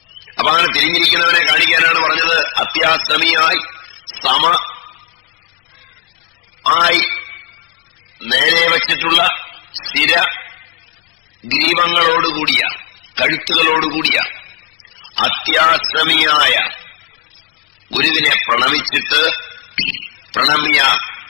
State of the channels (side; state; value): right; quieter; 22.3 dB